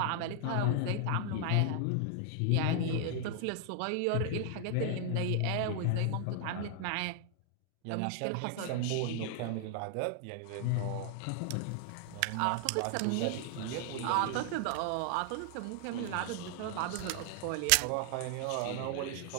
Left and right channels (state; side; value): different; both; correlation 0.00